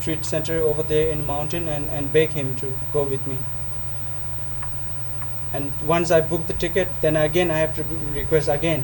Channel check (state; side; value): identical; both; correlation 1.00